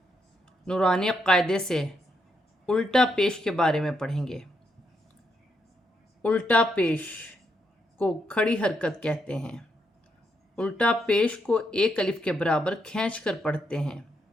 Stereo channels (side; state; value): both; normal; correlation 0.79